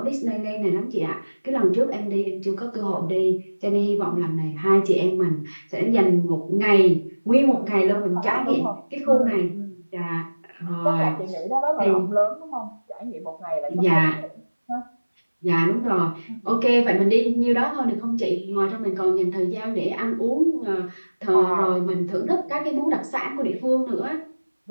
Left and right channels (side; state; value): both; inverted; correlation -1.00